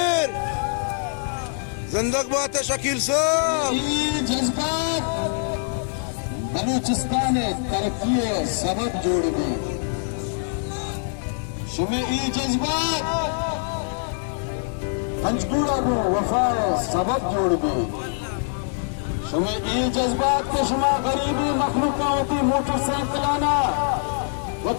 زندگ بات شکیل صاحب یہ جذبات بلوچستان ترقی سبب جوڑ گئے شمع ای جذبات پنجپورہ کو وفائے سبب جوڑ گئے شمع ای جذبات کے شما غریبی مخلوقہ ہوتی موٹر سائیکلانا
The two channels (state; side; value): silent; right; digital silence